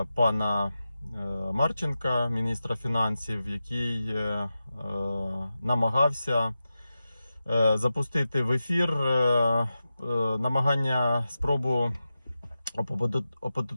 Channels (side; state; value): both; inverted; correlation -0.92